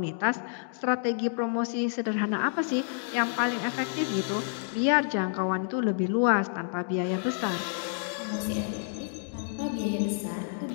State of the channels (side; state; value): right; silent; digital silence